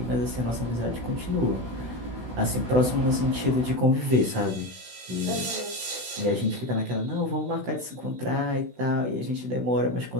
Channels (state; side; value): late; left; 16 ms